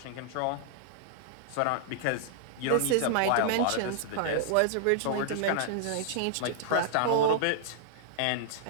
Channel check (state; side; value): different; both; correlation -0.01